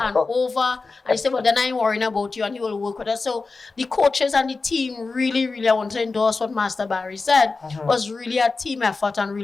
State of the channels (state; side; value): quieter; right; 4.0 dB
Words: and over. And he said, well, then I ain't worrying about you. And he will work with us. So the coaches and the team really, really, I want to endorse what Master Barry said, was really a team effort and